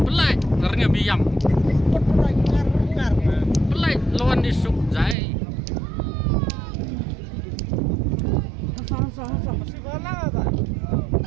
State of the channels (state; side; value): drops out; left; at 5.2 s